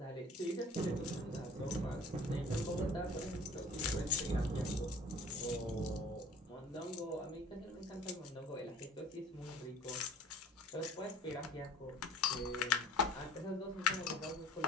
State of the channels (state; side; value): normal; both; correlation 0.47